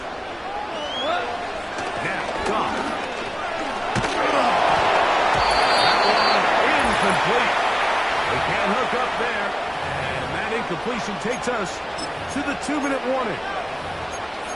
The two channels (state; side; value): identical; both; correlation 1.00